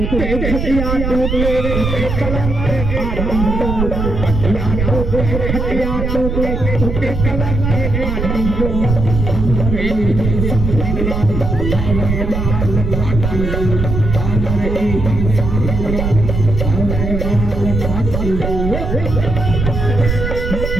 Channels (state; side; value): noise; right; rumble, 2 dB below the sound